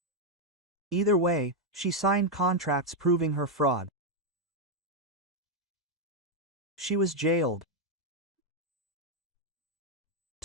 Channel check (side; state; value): both; normal; correlation 0.01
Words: Either way, she signed contracts proving her fraud. She was jailed.